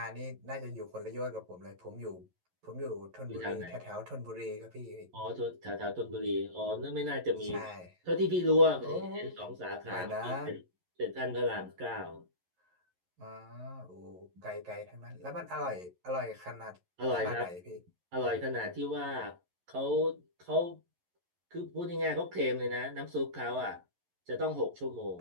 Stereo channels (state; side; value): late; left; 11 ms